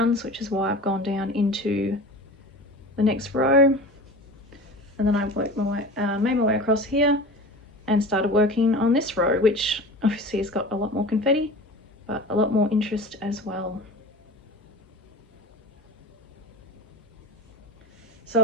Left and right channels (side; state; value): both; normal; correlation 0.35